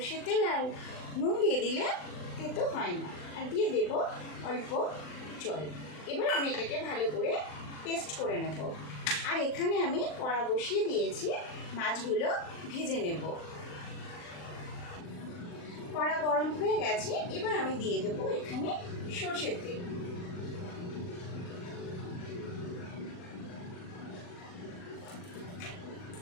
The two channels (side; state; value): right; late; 39 ms